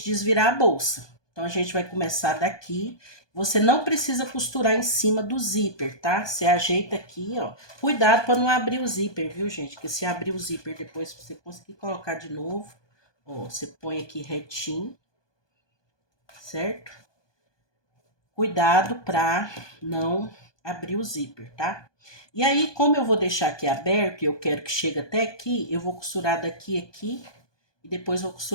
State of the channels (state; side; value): late; right; 1.2 ms